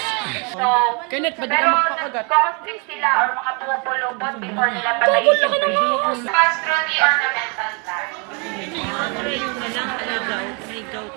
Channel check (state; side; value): quieter; left; 33.7 dB